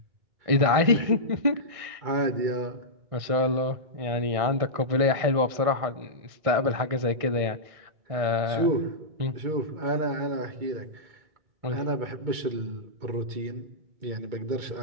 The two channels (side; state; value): left; late; 1.6 ms